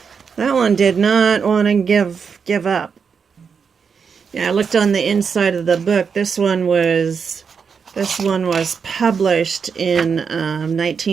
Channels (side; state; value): left; quieter; 6.1 dB